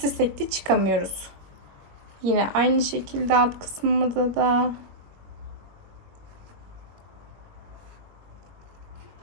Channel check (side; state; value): left; late; 21 ms